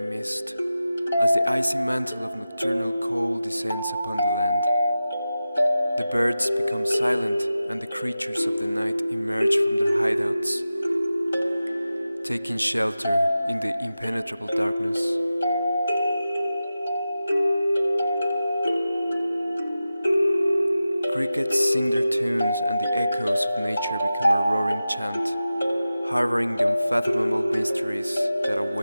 as the icy mantle of nocturnal cold descends upon the land. The birds become silent and the creatures of the night emerge from their hideouts, taking shelter in the impenetrable darkness. Crickets sing their tunes and the echoes of nature become a roaring chant, harboring the unfathomable mysteries that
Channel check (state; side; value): inverted; both; correlation -0.94